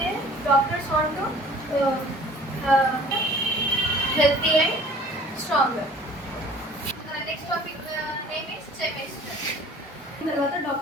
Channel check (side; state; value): both; normal; correlation 0.49